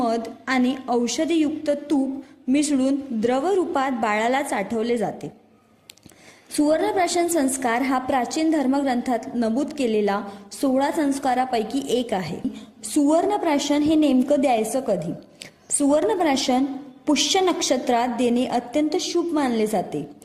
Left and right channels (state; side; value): identical; both; correlation 1.00